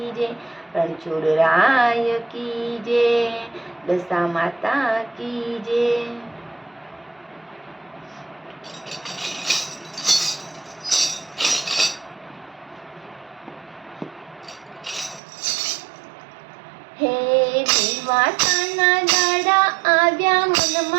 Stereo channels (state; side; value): drops out; left; at 15.2 s